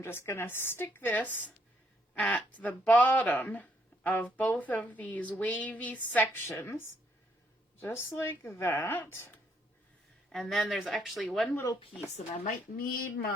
just going to stick this at the bottom of both of these wavy sections, just like that. And then there's actually one little piece, and I might need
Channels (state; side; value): normal; both; correlation 0.71